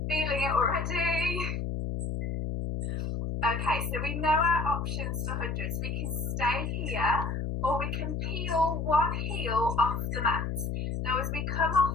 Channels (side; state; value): left; noise; hum, 2 dB below the sound